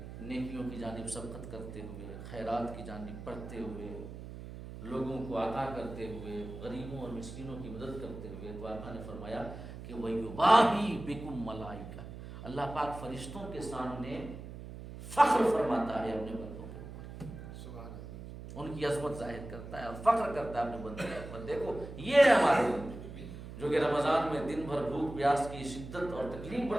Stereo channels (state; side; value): noise; right; hum, 11 dB below the sound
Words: نیکیوں کی جانب سبقت کرتے ہوئے، خیرات کی جانب بڑھتے ہوئے، لوگوں کو عطا کرتے ہوئے، غریبوں اور مسکینوں کی مدد کرتے ہوئے، تو آقا نے فرمایا کہ وَيُبَاهِي بِكُمْ مَلَائِكَةٌ، اللہ پاک فرشتوں کے سامنے فخر فرماتا ہے اپنے بندوں کے اوپر، ان کی عظمت ظاہر کرتا ہے اور فخر کرتا ہے اپنے بندوں کے اوپر۔ دیکھو یہ ہے ہمارے بندے جو کہ رمضان میں دن بھر بھوک پیاس کی شدت اور تکلیف